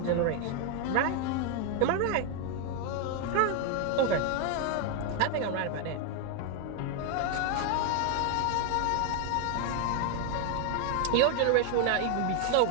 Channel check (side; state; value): both; different; correlation 0.00